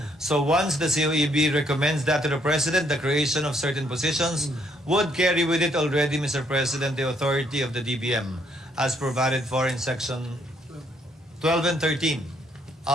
So once the COEB recommends that to the President, the creation of certain positions would carry with it already, Mr. President, the authority of the DBM as provided for in section 12 and 13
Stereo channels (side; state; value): both; normal; correlation 0.70